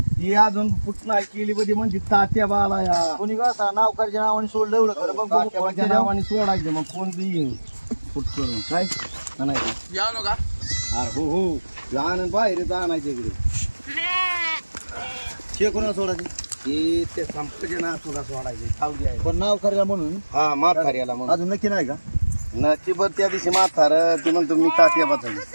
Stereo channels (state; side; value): inverted; both; correlation -1.00